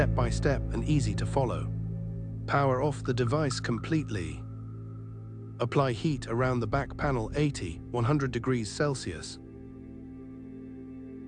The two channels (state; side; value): identical; both; correlation 1.00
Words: by step and easy to follow. Power off the device completely. Apply heat around the back panel 100 degrees Celsius.